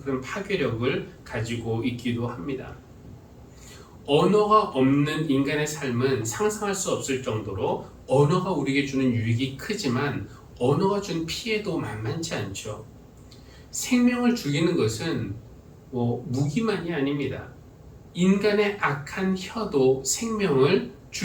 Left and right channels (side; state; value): both; identical; correlation 1.00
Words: 그런 파괴력을 가지고 있기도 합니다. 언어가 없는 인간의 삶은 상상할 수 없을 정도로 언어가 우리에게 주는 유익이 크지만 언어가 준 피해도 만만치 않죠. 생명을 죽이는 것은 무기만이 아닙니다. 인간의 악한 혀도 생명을